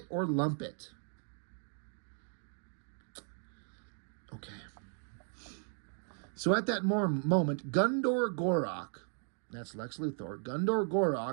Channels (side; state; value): left; silent; 54 dB below the other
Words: or lump it. Okay. So at that moment, Gundor Gorak, that's Lex Luthor, Gundor